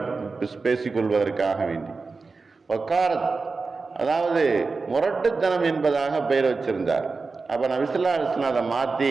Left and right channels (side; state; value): left; quieter; 4.2 dB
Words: பேசிக்கொள்வதற்காக வேண்டி வக்காரத், அதாவது முரட்டுத்தனம் என்பதாக பெயர் வச்சிருந்தார். அப்போ நபி ஸல்லல்லாஹு அலைஹி வஸல்லம் அதை மாற்றி